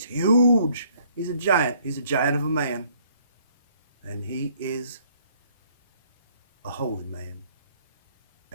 huge. He's a giant. He's a giant of a man. And he is a holy man.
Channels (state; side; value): inverted; both; correlation -0.63